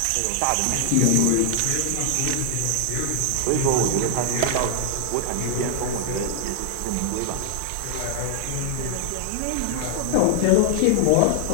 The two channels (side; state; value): both; different; correlation 0.00